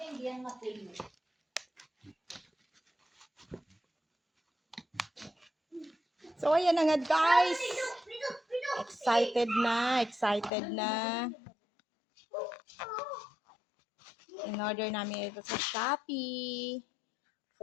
So ayan na nga guys. Excited na. In-order namin ito sa Shopee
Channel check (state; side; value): drops out; right; at 10.5 s